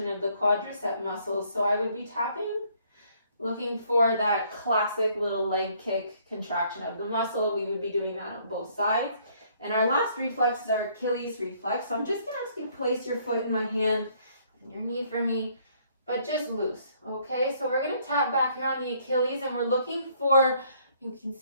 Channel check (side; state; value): both; inverted; correlation -0.65